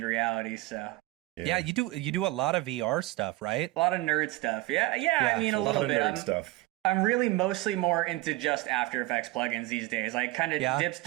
reality, so. Yeah, you do a lot of VR stuff, right? A lot of nerd stuff. Yeah. I mean, a little bit. Nerd stuff. I'm really mostly more into just After Effects plugins these days. Like, kind of dips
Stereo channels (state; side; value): quieter; left; 18.9 dB